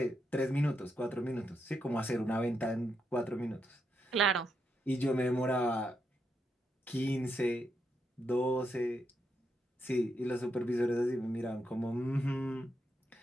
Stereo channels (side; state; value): both; normal; correlation 0.82